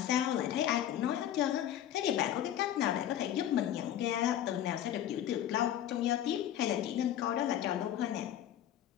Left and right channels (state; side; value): quieter; right; 11.3 dB